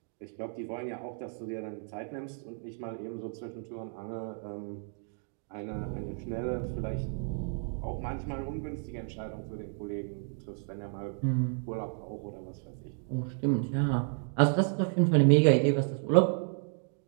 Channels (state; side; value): silent; left; 56 dB below the other